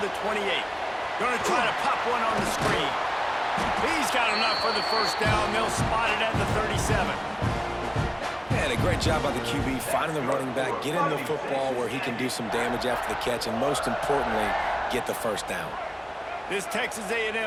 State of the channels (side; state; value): both; identical; correlation 1.00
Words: the 28. Going to try to pop one on the screen. He's got enough for the first down. They'll spot it at the 37. And a great job by the QB finding the running back, getting the football where he can do some damage after the catch, and most importantly, get the first down. This Texas